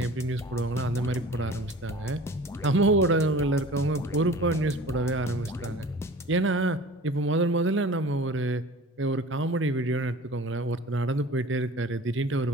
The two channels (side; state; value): both; normal; correlation 0.42